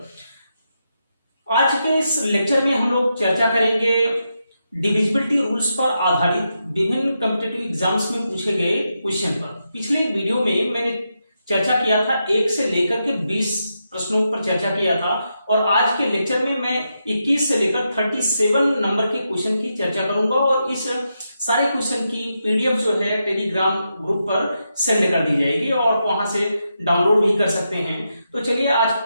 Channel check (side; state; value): both; inverted; correlation -0.85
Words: आज के इस लेक्चर में हम लोग चर्चा करेंगे डिविजिबिलिटी रूल्स पर आधारित विभिन्न कॉम्पिटिटिव एग्जाम्स में पूछे गए क्वेश्चन पर। पिछले वीडियो में मैंने चर्चा किया था 1 से लेकर के 20 प्रश्नों पर चर्चा किया था और आज के लेक्चर में मैं 21 से लेकर 37 नंबर के क्वेश्चन की चर्चा करूंगा और इस सारे क्वेश्चन की पीडीएफ जो है टेलीग्राम ग्रुप पर सेंड कर दी जाएगी और वहां से डाउनलोड भी कर सकते हैं। तो चलिए आज